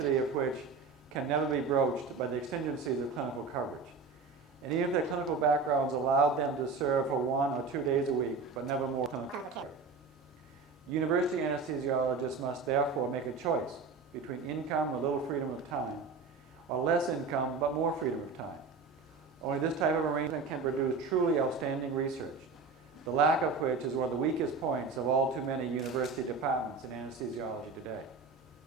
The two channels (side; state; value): left; quieter; 4.4 dB